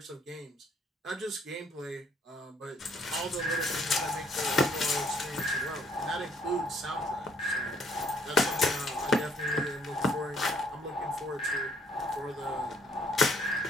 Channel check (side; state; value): both; normal; correlation 0.65